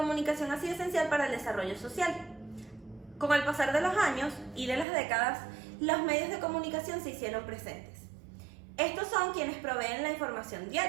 ha sido esencial para el desarrollo social. Con el pasar de los años y de las décadas, los medios de comunicación se hicieron presentes. Estos son quienes proveen la información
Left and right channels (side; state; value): left; drops out; at 4.9 s